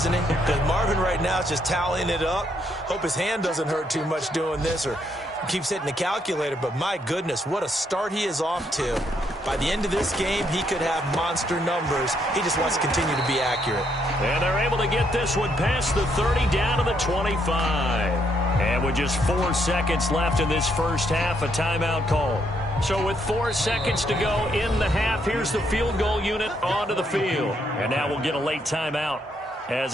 he? Because Marvin right now is just tallying it up. Hope his hand doesn't hurt too much doing this or keeps hitting the calculator. But my goodness, what a start he is off to. By the end of this game, he could have monster numbers. He just wants to continue to be accurate. And they're able to get this one past the 30 down to the 25. And with just 4 seconds left in this first half, a timeout call. So with 4 seconds to go in the half, here's the field goal unit onto the field. And now we'll get a late timeout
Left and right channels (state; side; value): normal; both; correlation 0.74